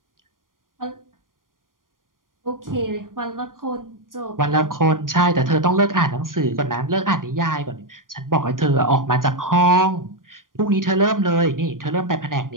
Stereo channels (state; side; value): late; left; 0.90 ms